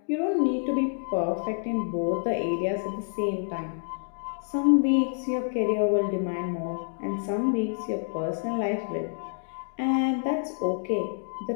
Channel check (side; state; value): right; silent; digital silence